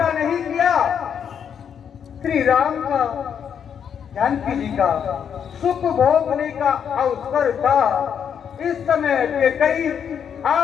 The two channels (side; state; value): right; quieter; 7.9 dB